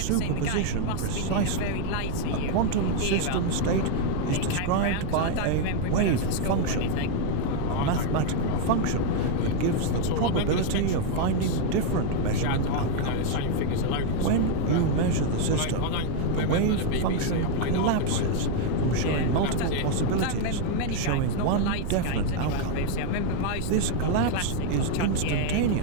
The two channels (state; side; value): different; both; correlation 0.00